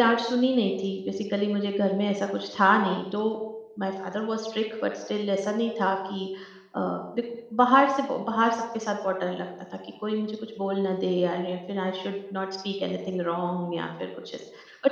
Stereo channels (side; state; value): both; identical; correlation 1.00